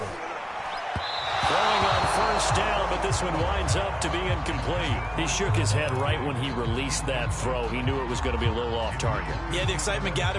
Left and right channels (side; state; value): both; identical; correlation 1.00